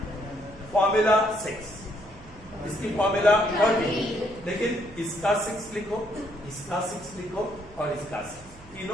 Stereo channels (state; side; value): noise; right; hum, 22 dB below the sound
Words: फॉर्मूला 6, इसकी फॉर्मूला 30. लेकिन इसका 6 लिखो, इसका 6 लिखो और इसका 6.